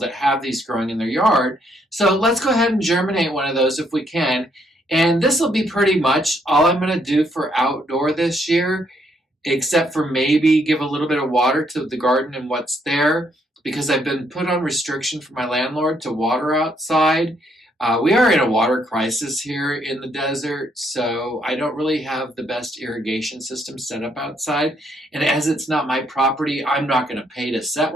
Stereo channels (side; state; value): both; normal; correlation 0.72